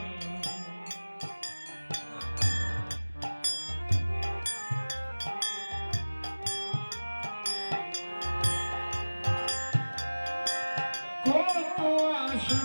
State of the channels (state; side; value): inverted; both; correlation -1.00